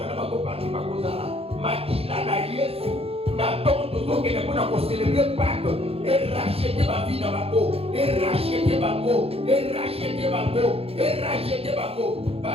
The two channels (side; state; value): left; late; 0.28 ms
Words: na bango parti bakozala, makila na Yesu. N'attends toujours qu'il est pour célébrer Pâques et racheter ma vie dans ma peau, et racheter ma peau, et racheter ma peau, et racheter ma peau.